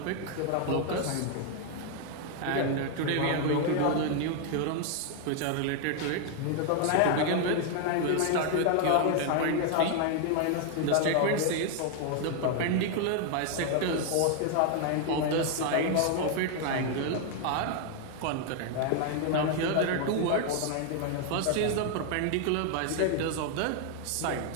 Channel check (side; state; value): both; different; correlation 0.00